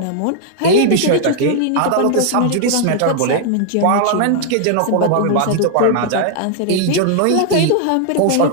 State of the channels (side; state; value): both; different; correlation 0.00